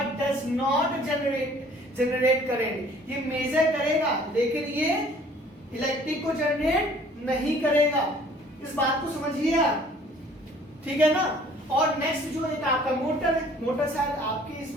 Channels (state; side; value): normal; both; correlation 0.54